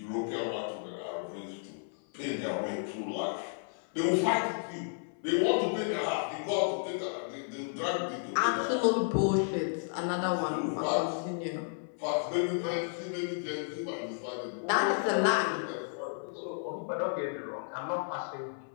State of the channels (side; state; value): right; silent; 56 dB below the other